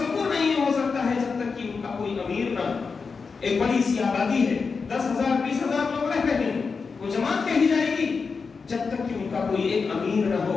نہیں ہو سکتا ہے جب تک کہ ان کا کوئی امیر نہ۔ ایک بڑی سی آبادی ہے، 10,000 20,000 لوگ رہ رہے ہیں، وہ جماعت کہی جائے گی، جب تک کہ ان کا کوئی ایک امیر نہ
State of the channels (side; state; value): right; quieter; 5.0 dB